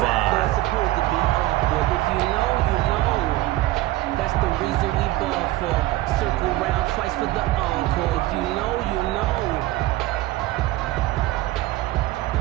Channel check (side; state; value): left; quieter; 17.1 dB